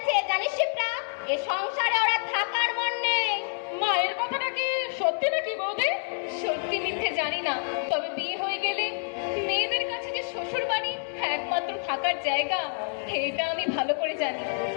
জানিস শিপ্রা, এ সংসারে ওরা থাকার মন নেই। মায়ের কথাটা কি সত্যি নাকি বৌদি? সত্যি মিথ্যে জানি না, তবে বিয়ে হয়ে গেলে মেয়েদের কাছে যে শ্বশুর বাড়ি একমাত্র থাকার জায়গা, এটা আমি ভালো করে জানি।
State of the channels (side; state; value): right; silent; digital silence